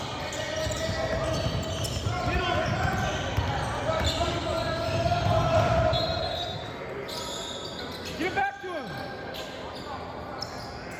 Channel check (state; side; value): identical; both; correlation 1.00